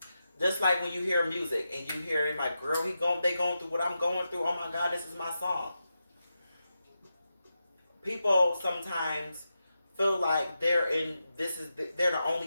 just like when you hear music and you hear it like, girl, they going through what I'm going through. Oh my God, this is my song. People sometimes feel like they're the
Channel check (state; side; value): inverted; both; correlation -0.89